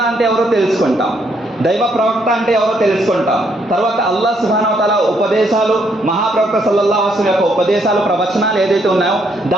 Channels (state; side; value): normal; both; correlation 0.72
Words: అంటే ఎవరో తెలుసుకుంటాం, దైవ ప్రవక్త అంటే ఎవరో తెలుసుకుంటాం. తర్వాత అల్లాహ్ సుబ్హానహు వ తఆలా ఉపదేశాలు, మహాప్రవక్త సల్లల్లాహు అలైహి వసల్లం యొక్క ఉపదేశాలు, ప్రవచనాలు ఏదైతే ఉన్నాయో